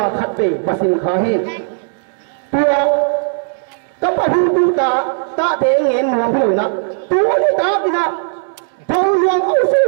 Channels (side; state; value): left; silent; digital silence